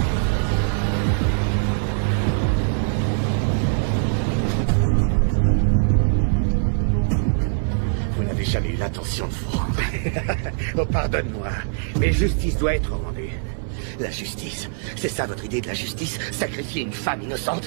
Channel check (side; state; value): left; silent; 60 dB below the other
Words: Vous n'avez jamais eu l'intention de vous rendre. Oh, pardonne-moi, mais justice doit être rendue. La justice, c'est ça votre idée de la justice? Sacrifier une femme